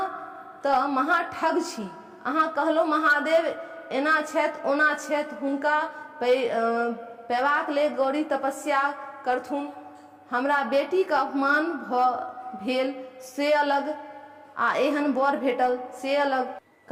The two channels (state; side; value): identical; both; correlation 1.00